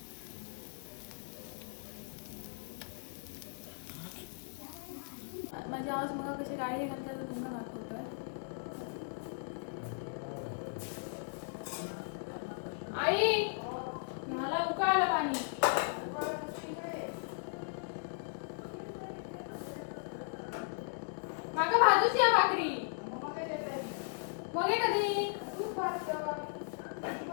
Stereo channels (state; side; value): silent; right; digital silence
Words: माझी आवाज मग कशी गाडी घालता तर तुमका दाखवतोय. आई मला उकळलं पाणी. माका भाजूची या भाकरी मग कधी